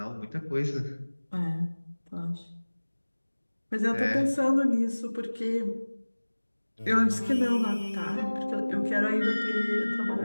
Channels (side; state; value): both; inverted; correlation -1.00